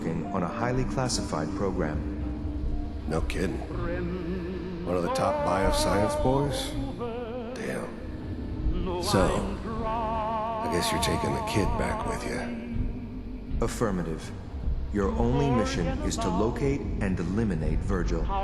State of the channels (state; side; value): identical; both; correlation 1.00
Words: on a highly classified program. No kidding. One of the top bioscience boys? Damn. So, I guess you're taking the kid back with you. Affirmative. Your only mission is to locate and eliminate Virgil.